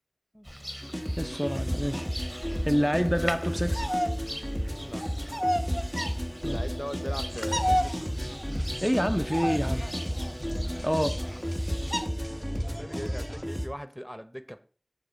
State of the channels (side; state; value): both; identical; correlation 1.00